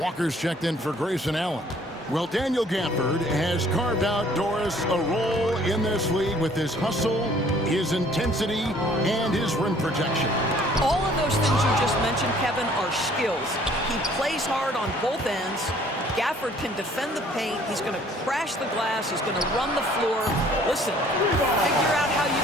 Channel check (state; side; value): normal; both; correlation 0.57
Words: checked in for Grayson Allen. Well, Daniel Gafford has carved out, Doris, a role in this league with his hustle, his intensity, and his rim protection. All of those things you just mentioned, Kevin, are skills. He plays hard on both ends. Gafford can defend the paint. He's going to crash the glass. He's going to run the floor. Listen, figure out how you